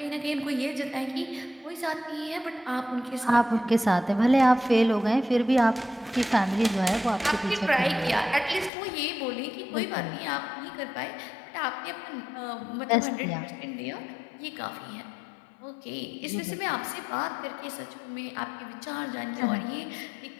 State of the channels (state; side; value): drops out; right; at 8.7 s